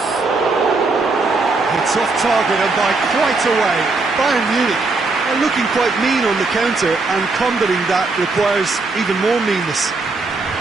It's off target and by quite a way. Bayern Munich are looking quite mean on the counter, and combating that requires even more meanness.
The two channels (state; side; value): quieter; left; 3.7 dB